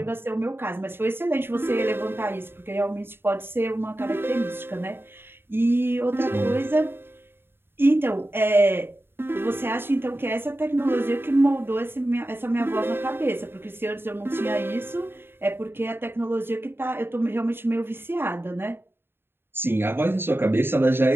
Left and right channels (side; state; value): left; late; 0.11 ms